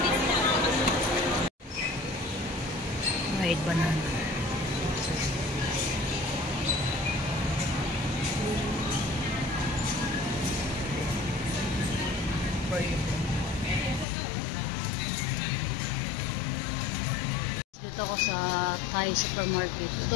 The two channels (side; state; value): right; drops out; at 14.1 s